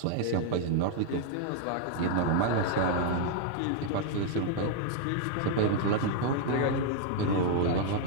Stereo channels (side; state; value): both; different; correlation -0.01